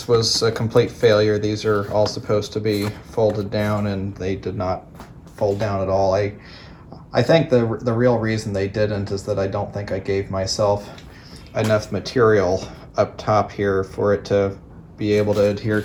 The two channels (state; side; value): identical; both; correlation 1.00